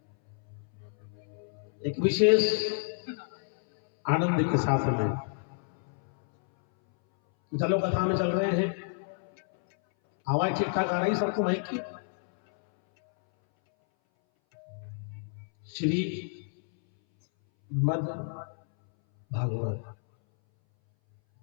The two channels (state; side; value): silent; right; 58 dB below the other